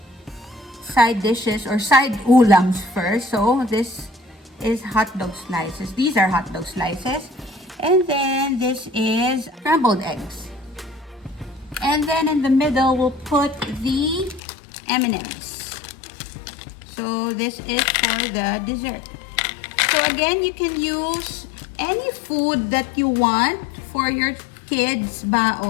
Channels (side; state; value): right; drops out; at 14.4 s